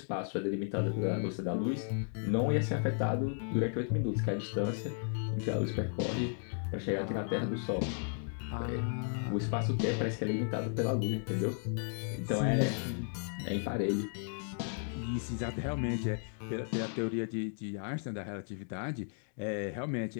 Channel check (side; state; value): right; silent; 55 dB below the other